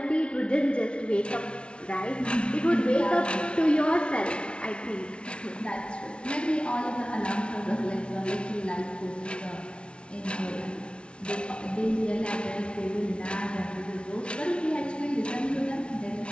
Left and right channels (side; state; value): right; late; 0.058 ms